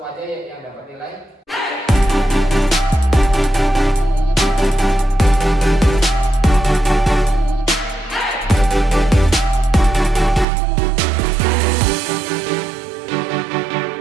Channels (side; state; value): left; drops out; at 10.5 s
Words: aja yang dapat nilai.